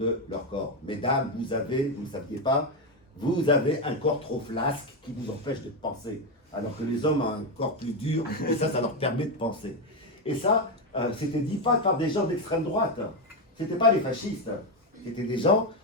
leur corps. Mesdames, vous ne le saviez pas, vous avez un corps trop flasque qui vous empêche de penser, alors que les hommes ont un corps plus dur, et ça leur permet de penser. Et ça, c'était dit pas par des gens d'extrême droite, c'était pas les fascistes, c'était des gens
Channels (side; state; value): both; normal; correlation 0.08